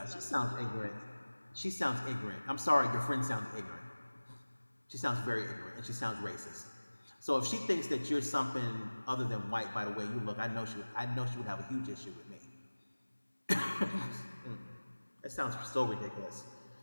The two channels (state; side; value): inverted; both; correlation -1.00